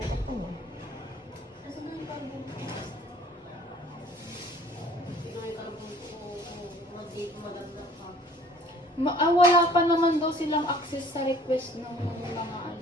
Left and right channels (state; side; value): normal; both; correlation 0.52